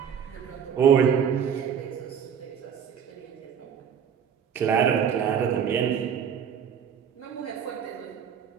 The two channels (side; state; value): left; quieter; 7.8 dB